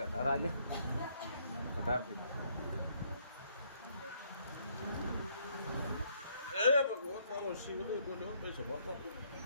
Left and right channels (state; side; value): inverted; both; correlation -0.69